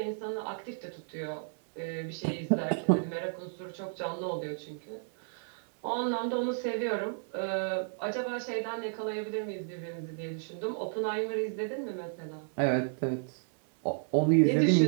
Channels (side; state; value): left; silent; 56 dB below the other